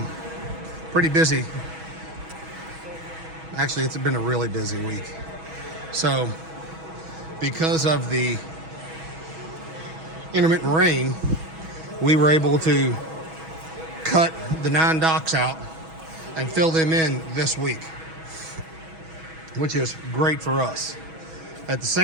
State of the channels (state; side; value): late; left; 6.2 ms